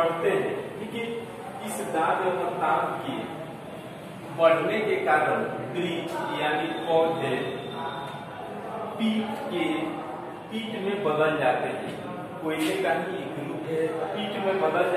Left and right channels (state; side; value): identical; both; correlation 1.00